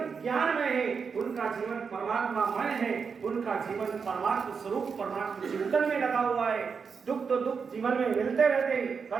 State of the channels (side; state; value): left; quieter; 5.8 dB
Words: ज्ञान में है, उनका जीवन परमात्मामय है, उनका जीवन परमात्मा स्वरूप परमात्मा चिंतन में लगा हुआ है। दुख तो दुख जीवन में मिलते रहते हैं,